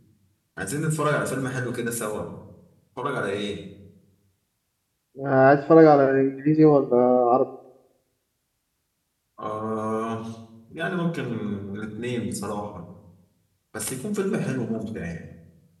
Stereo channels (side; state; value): both; identical; correlation 1.00